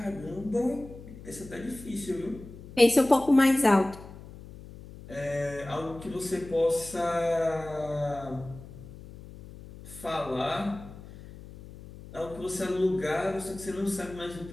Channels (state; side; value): noise; left; hum, 16 dB below the sound